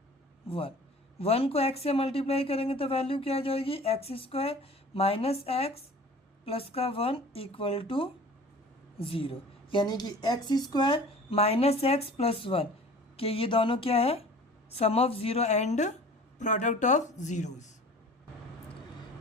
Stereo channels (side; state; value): both; normal; correlation 0.44